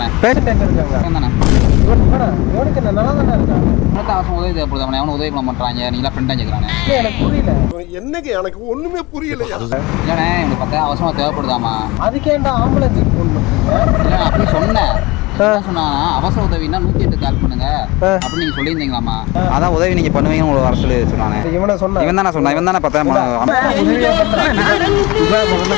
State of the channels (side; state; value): right; quieter; 22.6 dB